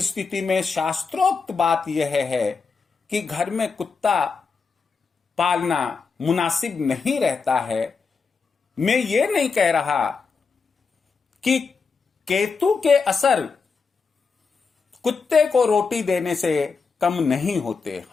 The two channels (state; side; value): quieter; right; 5.0 dB